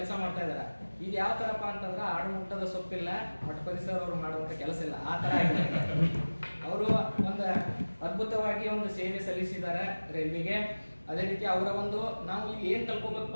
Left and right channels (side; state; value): both; inverted; correlation -1.00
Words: ಮಾಡ್ತಾ ಇದ್ದಾರೆ. ಇದು ಯಾವ ಥರಪ್ಪ ಅಂತಂದ್ರೆ ಆಡು ಮುಟ್ಟದ ಸೊಪ್ಪಿಲ್ಲ, ಮಠಪತಿ ಸರ್ ಅವರು ಮಾಡುವಂಥ ಕೆಲಸ ಇಲ್ಲ, ಆ ಥರ ಆಗಿದೆ. ಅವರು ಒಂದು ಅದ್ಭುತವಾಗಿ ಒಂದು ಸೇವೆ ಸಲ್ಲಿಸಿದ್ದಾರೆ ರೈಲ್ವೆಗೆ. ಅದೇ ರೀತಿ ಅವರ ಒಂದು ನಾವು ಇಲ್ಲಿ ಏನು ಕಲ್ಕೋಬೇಕಪ್ಪ